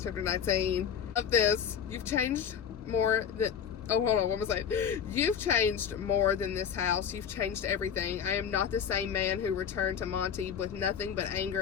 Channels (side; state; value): right; quieter; 7.9 dB